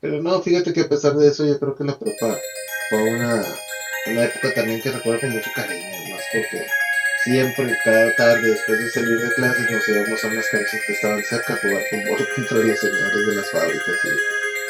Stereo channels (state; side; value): identical; both; correlation 1.00